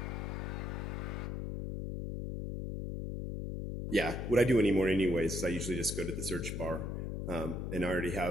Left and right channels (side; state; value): left; noise; hum, 3 dB below the sound